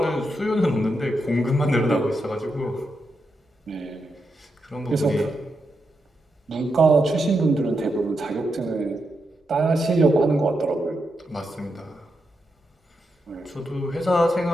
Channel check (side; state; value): both; normal; correlation 0.85